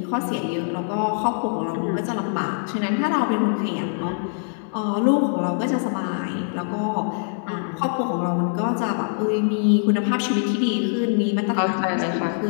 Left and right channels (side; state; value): right; silent; digital silence